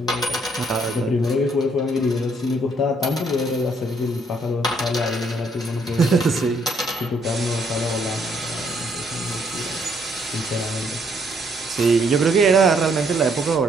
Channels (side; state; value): both; normal; correlation 0.69